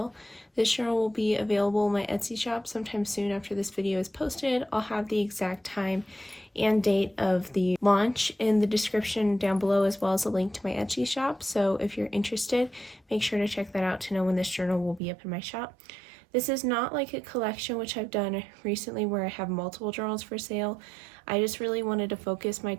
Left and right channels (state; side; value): drops out; left; at 15.0 s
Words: This journal will be available in my Etsy shop sometime soon after this video is posted. I'll have the exact time and date of the launch in the description down below, as well as a link to my Etsy shop. So if you're interested, make sure to check that out to know when this journal will be up in my shop. This is not like a collection which I've done recently where I have multiple journals for sale. I just really wanted to focus my